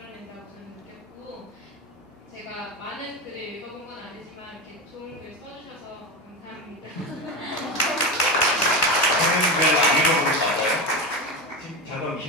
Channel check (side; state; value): both; normal; correlation 0.20